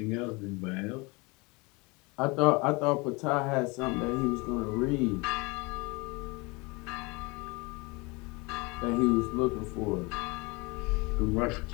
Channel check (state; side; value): quieter; right; 26.7 dB